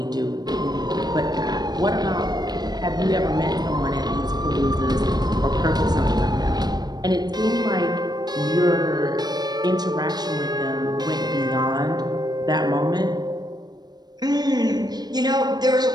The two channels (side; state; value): left; late; 0.19 ms